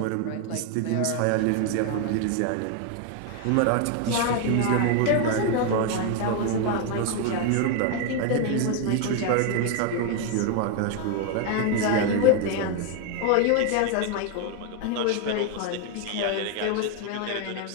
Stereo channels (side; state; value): both; different; correlation 0.01